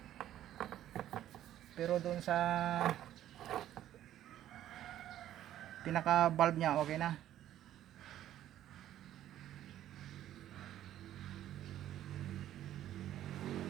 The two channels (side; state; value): left; quieter; 12.3 dB